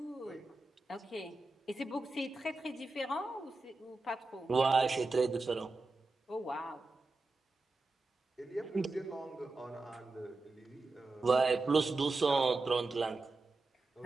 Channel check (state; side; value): quieter; left; 3.3 dB